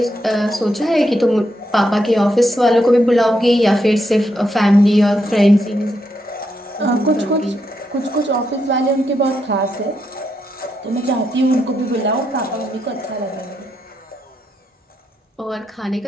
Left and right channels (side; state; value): both; normal; correlation 0.81